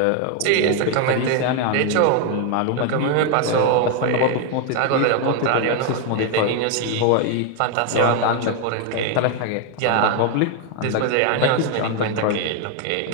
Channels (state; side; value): different; both; correlation 0.01